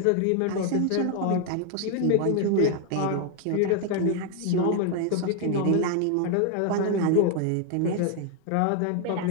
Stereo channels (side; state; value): both; different; correlation 0.01